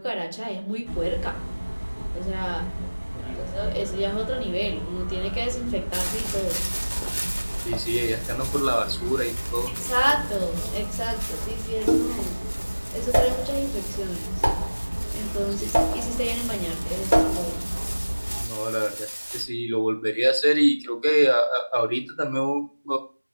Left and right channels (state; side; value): inverted; both; correlation -1.00